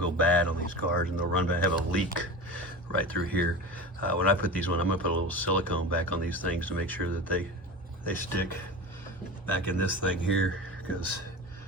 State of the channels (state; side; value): normal; both; correlation 0.31